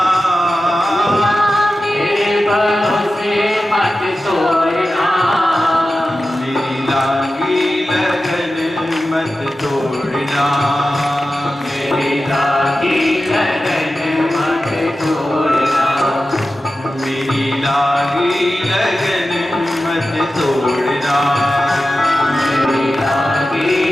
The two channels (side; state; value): both; normal; correlation 0.93